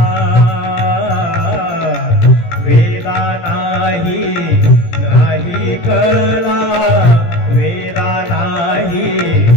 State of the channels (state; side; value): late; right; 17 ms